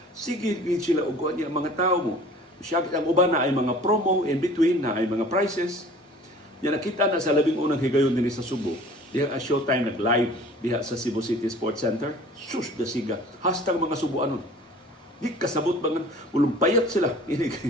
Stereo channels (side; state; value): both; normal; correlation 0.47